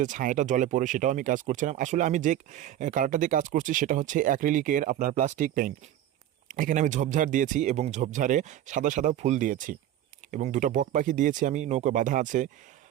ছায়াটা জলে পড়ে সেটাও আমি কাজ করছিলাম। আসলে আমি যে কালারটা দিয়ে কাজ করছি সেটা হচ্ছে অ্যাক্রিলিকের আপনার প্লাস্টিক পেইন্ট। এখানে আমি ঝোপঝাড় দিয়েছি এবং ঝোপঝাড়ে সাদা সাদা ফুল দিয়েছি এবং দুটো বক পাখি দিয়েছি, আমি নৌকা বাঁধা আছে।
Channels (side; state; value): left; quieter; 12.0 dB